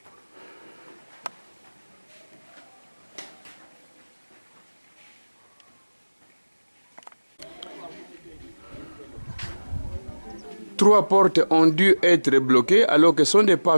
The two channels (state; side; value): inverted; both; correlation -1.00